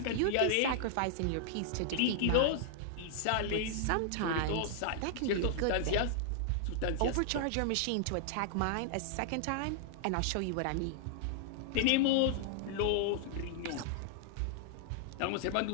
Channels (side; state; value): both; different; correlation -0.01